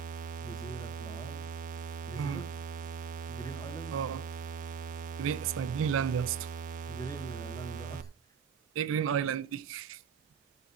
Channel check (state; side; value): quieter; left; 6.8 dB